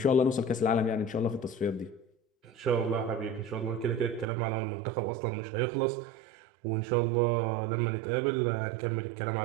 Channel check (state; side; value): drops out; left; at 4.2 s